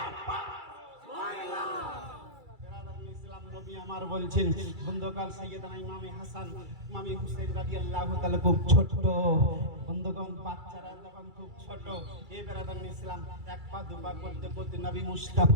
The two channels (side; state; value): left; late; 2.3 ms